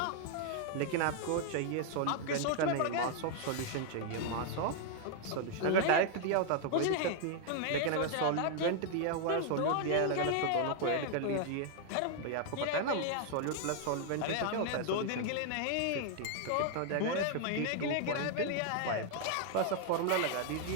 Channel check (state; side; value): different; both; correlation 0.00